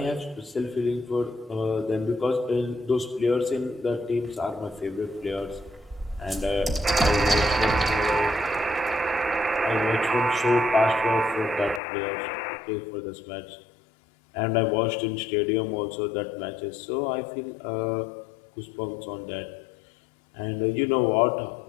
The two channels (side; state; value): right; drops out; at 11.8 s